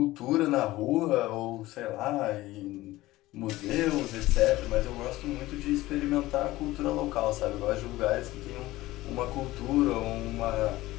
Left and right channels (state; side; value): quieter; right; 17.6 dB